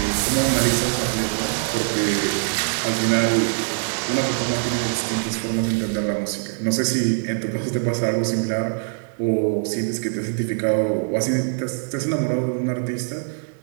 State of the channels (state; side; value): silent; left; 61 dB below the other